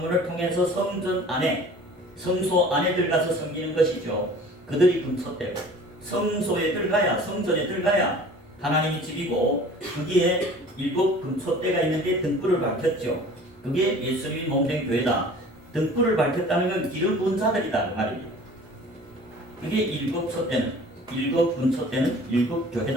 통해서 성전 안에 성소 안에 들어가서 섬기는 것이죠. 그들이 금소떼고 성소에 들어가야 성전에 들어가야 하나님이 집이고 거기에 7 금소떼가 있는데 등불을 밝혔죠. 그게 예수님이 몸된 교회다. 등불을 밝혔다는 건 기름 부은 자들이다 그 말입니다. 그게 7 소떼는 7 금소떼는 7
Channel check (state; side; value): normal; both; correlation 0.46